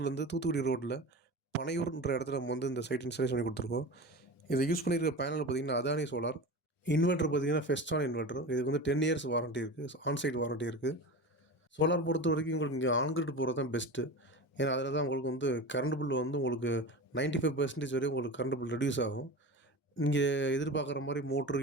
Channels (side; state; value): both; normal; correlation 0.29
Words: தூத்துக்குடி ரோட்ல பனையூர்ன்ற இடத்துல நம்ம வந்து இந்த சைட் இன்ஸ்டாலேஷன் பண்ணி குடுத்துருக்கோம். இத யூஸ் பண்ணியிருக்க பேனல் பார்த்தீங்கன்னா, அதானி சோலார். இன்வெர்ட்டர் பார்த்தீங்கன்னா, ஃபெஸ்டான் இன்வெர்ட்டர். இதுக்கு வந்து 10 இயர்ஸ் வாரண்டி இருக்கு. ஆன் சைட் வாரண்டி இருக்கு. சோலார் பொறுத்தவரைக்கும் உங்களுக்கு இங்க ஆன் கிரிட் போறது தான் பெஸ்ட்டு. ஏன்னா, அதில தான் உங்களுக்கு வந்து கரண்ட் பில் வந்து உங்களுக்கு 95% வரையும் உங்களுக்கு கரண்ட் பில் ரெடியூஸ் ஆகும். இங்கே எதிர்பார்க்குற மாரி மோட்ரு,